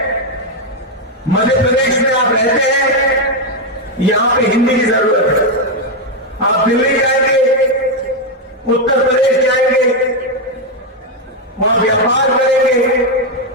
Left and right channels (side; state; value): both; normal; correlation 0.03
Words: मध्य प्रदेश में आप रहते हैं, यहां पे हिंदी की जरूरत है। आप दिल्ली जाएंगे, उत्तर प्रदेश जाएंगे, वहां व्यापार करेंगे,